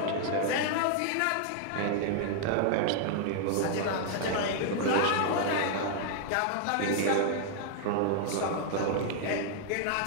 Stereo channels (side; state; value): both; different; correlation -0.01